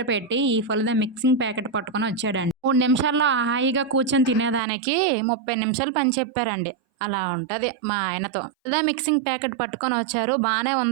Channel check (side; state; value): left; drops out; at 4.6 s